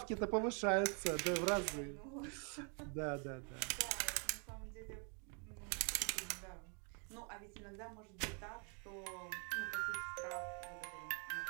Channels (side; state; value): left; quieter; 38.3 dB